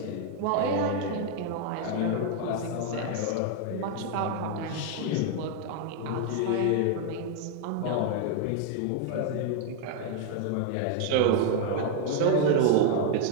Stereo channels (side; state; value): both; different; correlation 0.00